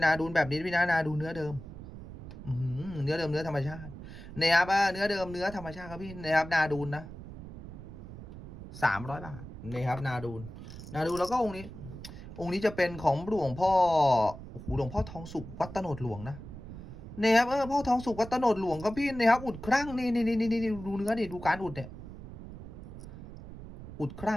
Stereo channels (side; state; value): right; noise; rumble, 13 dB below the sound